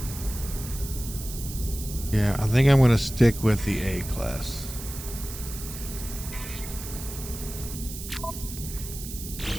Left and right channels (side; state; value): right; noise; hiss, 10 dB below the sound